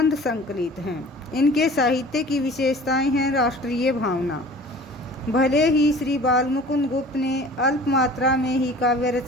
संकलित हैं। इनके साहित्य की विशेषताएं हैं। राष्ट्रीय भावना। भले ही श्री बालमुकुंद गुप्त ने अल्प मात्रा में ही काव्य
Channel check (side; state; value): both; normal; correlation 0.44